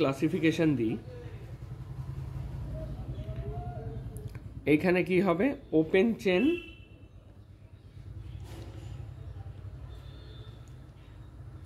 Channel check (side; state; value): both; identical; correlation 1.00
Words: দিই, এইখানে কি হবে, ওপেন চেন